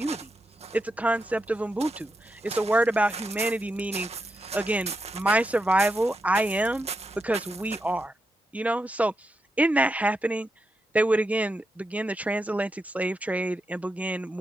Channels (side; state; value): both; normal; correlation 0.85